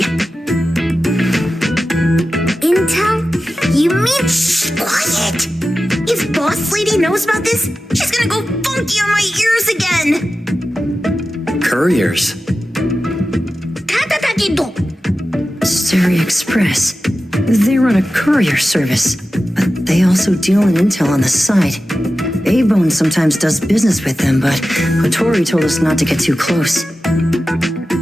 Intel? You mean shh, quiet! If Boss Lady knows about this, she's gonna go funky on my ears again! Couriers. Sari Express. They run a courier service, but they also deal in intel on the side. A-Bone sometimes does business with them, but Hotori told us not to get too close.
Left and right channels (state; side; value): normal; both; correlation 0.93